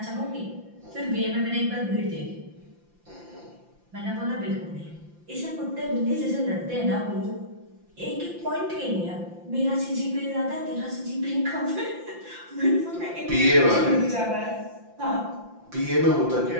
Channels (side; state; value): left; late; 5.8 ms